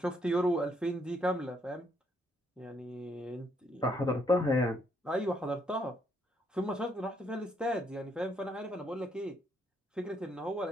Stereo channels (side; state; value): both; normal; correlation 0.72